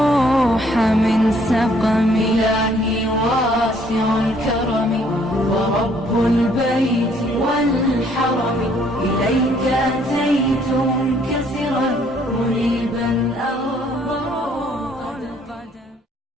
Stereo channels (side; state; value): both; normal; correlation 0.64